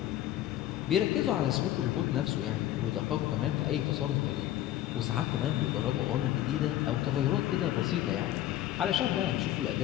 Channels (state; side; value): quieter; right; 13.3 dB